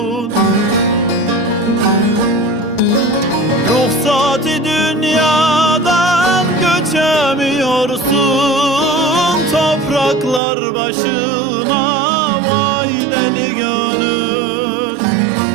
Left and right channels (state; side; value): drops out; left; at 10.4 s